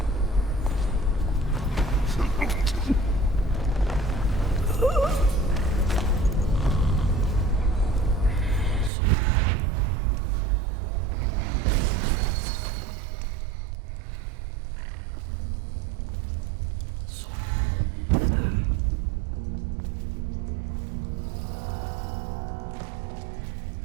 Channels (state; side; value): drops out; left; at 8.9 s